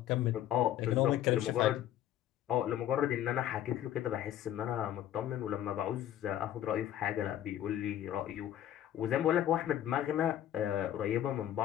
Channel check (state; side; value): quieter; right; 11.7 dB